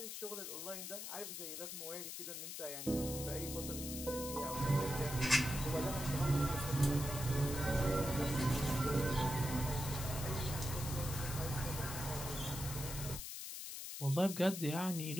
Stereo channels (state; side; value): noise; left; hiss, 7 dB below the sound